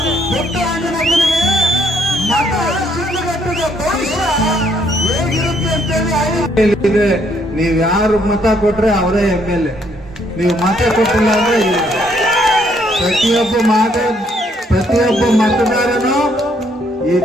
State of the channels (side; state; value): both; normal; correlation 0.69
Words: ಪುಟ್ಟಣ್ಣನಿಗೆ ಮತ ಶಿಡ್ಲಘಟ್ಟದ ಭವಿಷ್ಯ ಹೇಗಿರುತ್ತೆ ಅಂತೇಳಿ ನೀವು ಯಾರು ಮತ ಕೊಟ್ರೆ ಅವರೇ MLA. ನೀವು ಮತ ಕೊಟ್ಟಿಲ್ಲ ಅಂದ್ರೆ ಪ್ರತಿಯೊಬ್ಬ ಮತದಾರನು ಈ